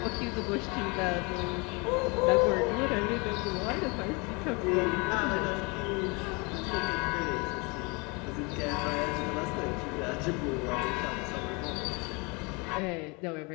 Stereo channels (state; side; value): quieter; right; 29.3 dB